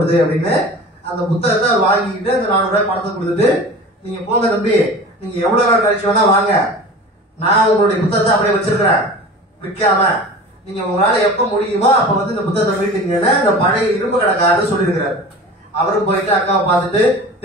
அப்படின்னு அந்த புத்தகத்தை வாங்கிட்டு அந்த 400 ரூபாய் பணத்தை கொடுத்துட்டு, நீங்க போங்க தம்பி, நீங்க எவ்வளவு நாள் கழிச்சு வேணா வாங்க, நான் உங்களுடைய புத்தகத்தை அப்படியே வச்சிருக்கிறேன் விற்காம, நீங்க உங்களால எப்ப முடியுமோ அப்ப வந்து இந்த புத்தகத்தை வீட்டுங்கன்னு அந்த பழைய இரும்பு கடைக்காரர் சொல்லியிருக்கிறாரு. அவரும் போயிட்டு அக்காவை பார்த்துட்டு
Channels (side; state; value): both; normal; correlation 0.37